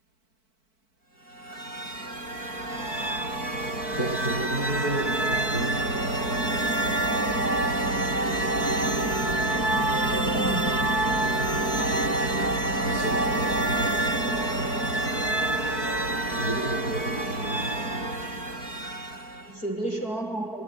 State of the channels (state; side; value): late; right; 4.5 ms